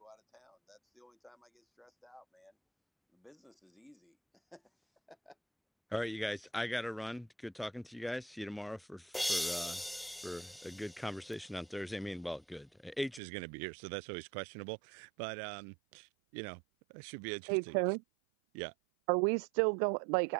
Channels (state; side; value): drops out; left; at 13.2 s